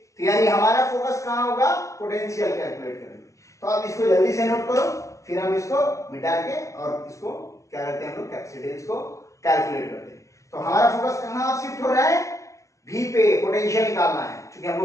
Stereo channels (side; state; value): right; late; 0.15 ms